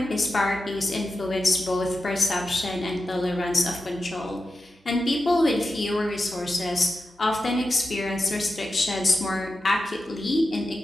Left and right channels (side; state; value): both; normal; correlation 0.91